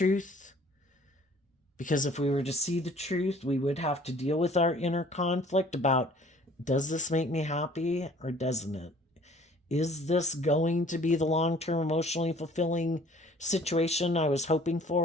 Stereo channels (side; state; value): both; normal; correlation 0.53